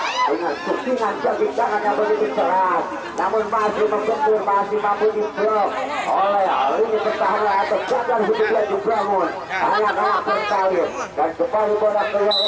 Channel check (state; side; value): identical; both; correlation 1.00